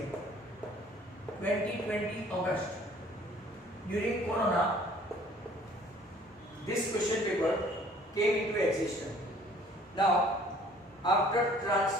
2020 August. During Corona, this question paper came into existence. Now, after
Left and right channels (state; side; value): normal; both; correlation 0.55